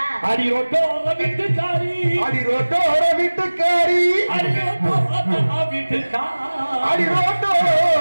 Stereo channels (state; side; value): inverted; both; correlation -1.00